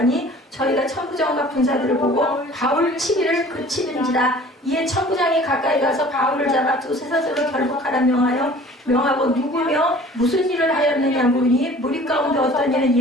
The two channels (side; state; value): both; normal; correlation 0.48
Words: 저희가 천부장과 군사들을 보고 바울 치기를 그치는지라. 이에 천부장이 가까이 가서 바울을 잡아 두세 사슬로 결박하라 명하고 누구며 무슨 일을 하였느냐 물으니 무리 가운데 어떤 이는 이